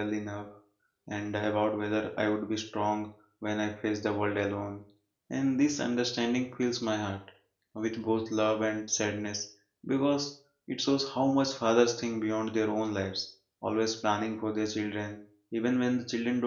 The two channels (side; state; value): both; identical; correlation 1.00